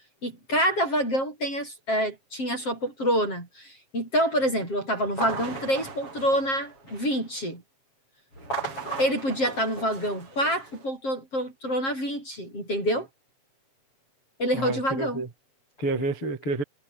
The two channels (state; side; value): late; right; 7.5 ms